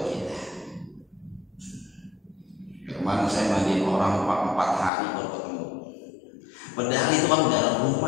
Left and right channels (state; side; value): drops out; right; at 4.9 s